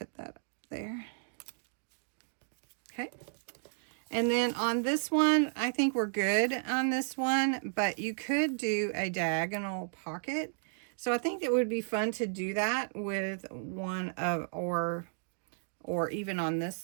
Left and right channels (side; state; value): left; silent; digital silence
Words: that up there. Okay. And then on this one, I think we're good on this one, but you could do a diagonal pocket. So I think it would be fun to do that with one of, or even on this